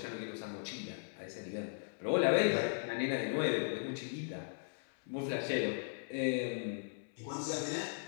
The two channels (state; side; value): silent; right; 53 dB below the other